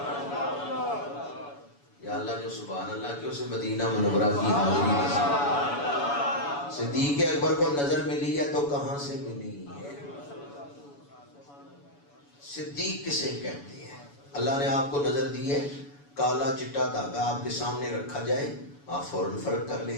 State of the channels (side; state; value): right; late; 7.0 ms